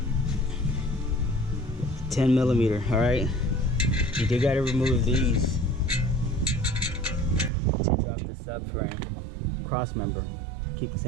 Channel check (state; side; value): drops out; left; at 7.5 s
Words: All right, you do got to remove these to drop the subframe cross member. Keep the